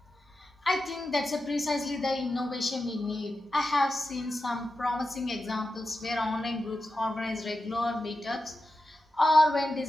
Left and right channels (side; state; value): both; normal; correlation 0.91